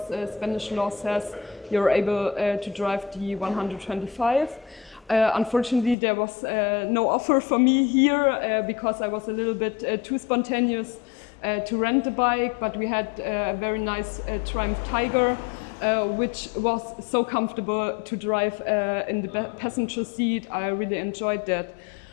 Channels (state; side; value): drops out; right; at 6.0 s